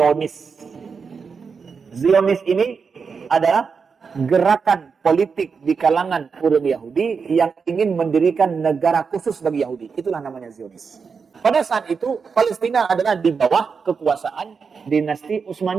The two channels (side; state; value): left; quieter; 5.6 dB